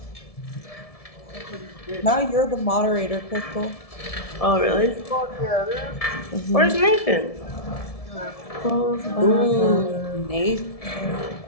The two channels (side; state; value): right; late; 1.7 ms